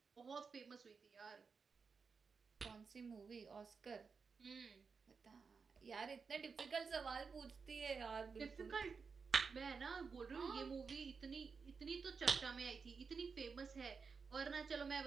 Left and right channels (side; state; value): left; quieter; 5.3 dB